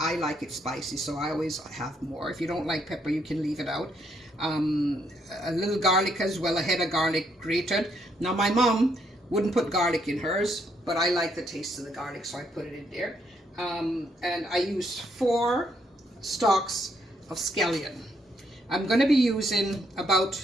like it spicy, so I always have more. If you don't like pepper, you can leave it out. A little garlic as well, a head of garlic grated. Now my mom wouldn't put garlic in hers, but I like the taste of the garlic, so I put it in there. And I used 4 stalks of scallion. I'm going to be using about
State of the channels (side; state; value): both; normal; correlation 0.73